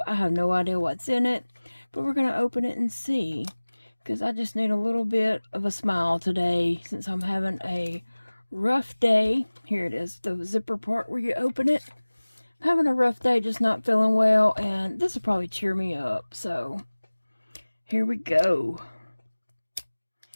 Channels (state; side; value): inverted; both; correlation -1.00